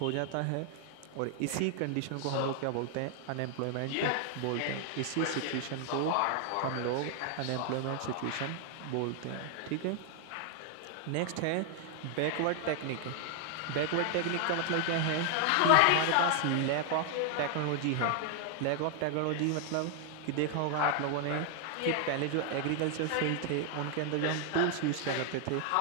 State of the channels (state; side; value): different; both; correlation 0.00